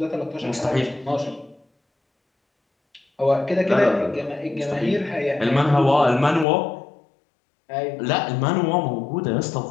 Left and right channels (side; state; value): right; drops out; at 6.5 s